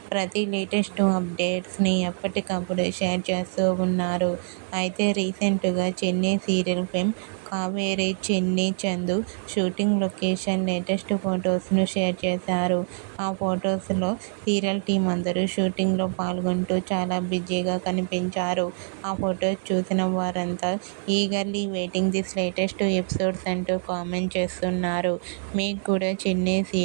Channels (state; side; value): silent; left; digital silence